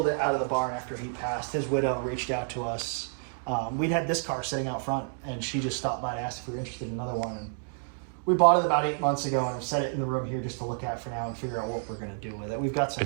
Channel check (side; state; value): left; silent; digital silence